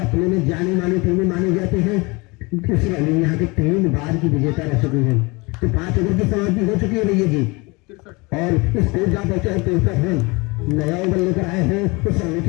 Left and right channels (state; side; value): quieter; right; 26.0 dB